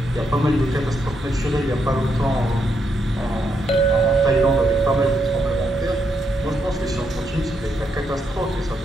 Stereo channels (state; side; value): normal; both; correlation 0.79